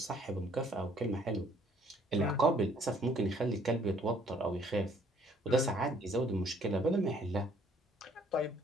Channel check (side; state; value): both; normal; correlation 0.61